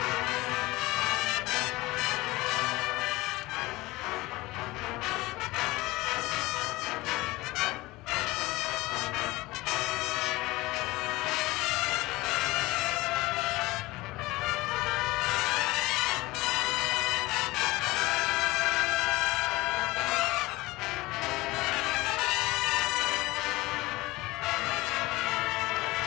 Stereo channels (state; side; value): quieter; right; 20.5 dB